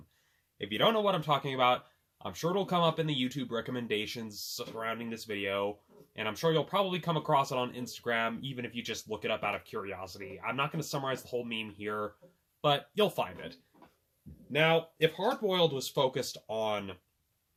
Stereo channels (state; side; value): identical; both; correlation 1.00